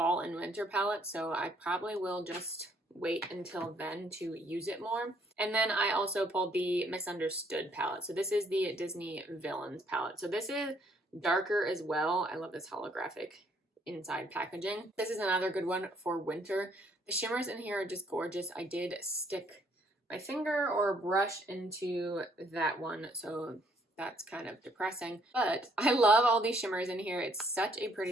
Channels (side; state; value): both; normal; correlation 0.66